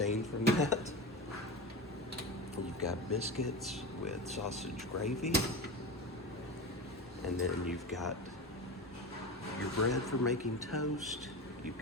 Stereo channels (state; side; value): normal; both; correlation 0.24